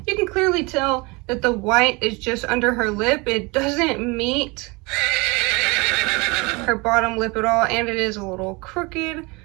can clearly tell that the white is just under her lip. It doesn't meet her bottom lip at all, and it is a little crooked.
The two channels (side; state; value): left; quieter; 26.4 dB